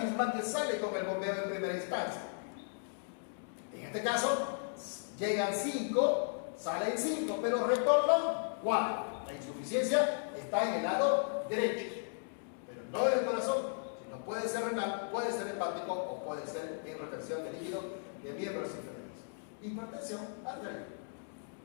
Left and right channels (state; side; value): silent; right; digital silence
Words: que sale con el bombeo en primera instancia. En este caso, llegan 5, salen 5, pero retornan 4. La insuficiencia está en el lado derecho, pero no en el corazón, sino puede ser renal, puede ser hepático o puede ser en retención de líquido de miembros inferiores. Hipertensión arterial,